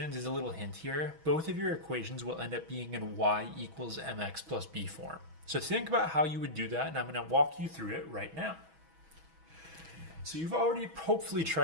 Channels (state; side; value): late; left; 6.2 ms